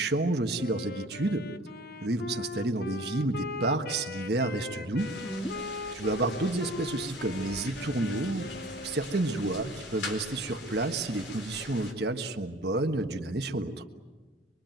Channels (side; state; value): both; normal; correlation 0.47